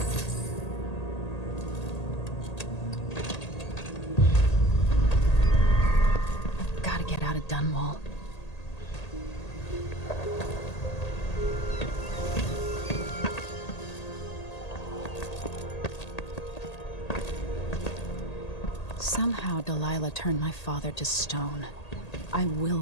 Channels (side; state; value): right; late; 1.8 ms